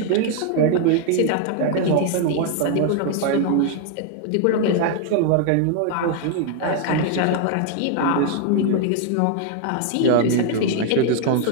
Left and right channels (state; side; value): different; both; correlation 0.00